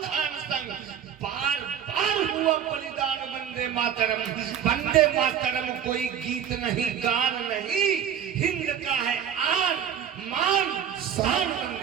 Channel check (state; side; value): quieter; left; 8.9 dB